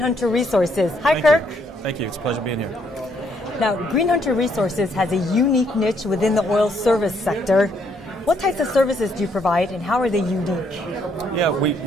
Resources. Hi, Kirk. Thank you. It's a pleasure being here. Now, GreenHunter Resources has a unique niche within the oil service sector. What types of services do you provide, and how are they unique? Yeah, we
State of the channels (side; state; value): both; normal; correlation 0.71